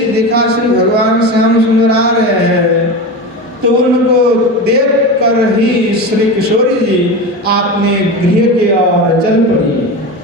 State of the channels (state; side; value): normal; both; correlation 0.24